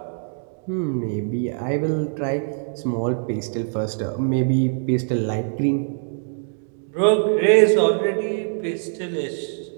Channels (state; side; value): silent; left; digital silence